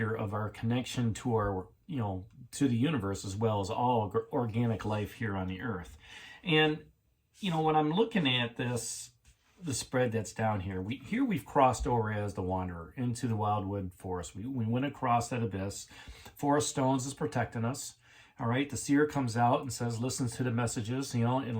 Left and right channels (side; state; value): both; identical; correlation 1.00